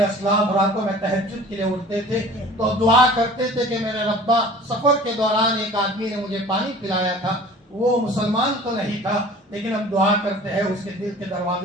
اسلاف راتوں میں تہجد کے لیے اٹھتے تھے تو دعا کرتے تھے کہ میرے ربا، سفر کے دوران ایک آدمی نے مجھے پانی پلایا تھا، وہ مسلمان تو نہیں تھا لیکن اب دعا کرتے ہیں اس کے دل کے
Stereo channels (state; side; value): normal; both; correlation 0.45